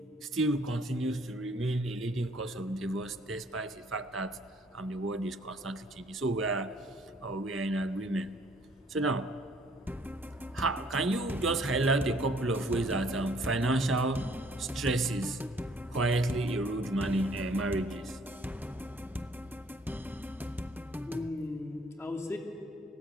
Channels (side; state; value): both; normal; correlation 0.61